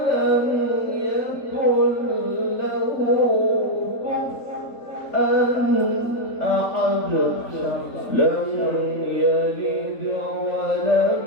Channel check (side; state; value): right; late; 3.9 ms